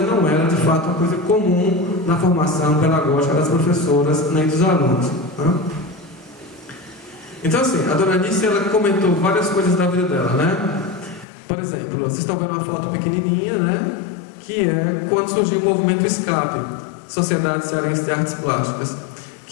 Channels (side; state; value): right; drops out; at 11.2 s